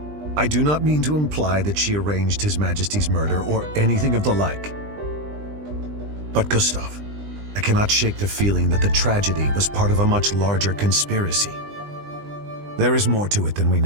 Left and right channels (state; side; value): late; left; 20 ms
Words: I do not mean to imply that she arranged His Majesty's murder or anything of the like. But Gustav, I cannot shake the feeling that the tragedy was part of a much larger conspiracy. There is more to it than we